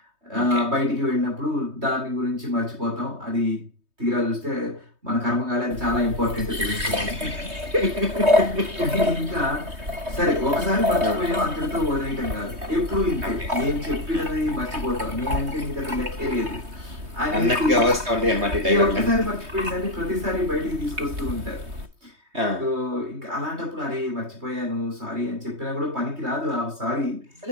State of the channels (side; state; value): left; late; 3.2 ms